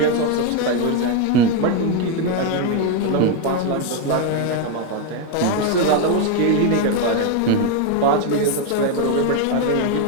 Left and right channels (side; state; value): both; different; correlation 0.01